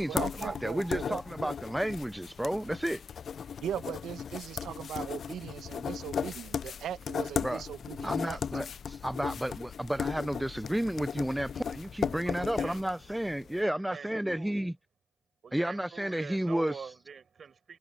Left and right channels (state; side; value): normal; both; correlation 0.90